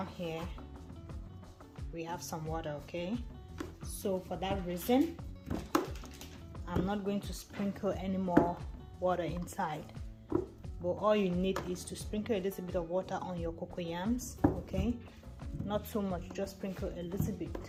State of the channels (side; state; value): both; identical; correlation 1.00